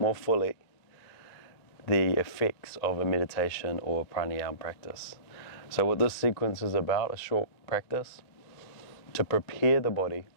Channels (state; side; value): late; right; 1.9 ms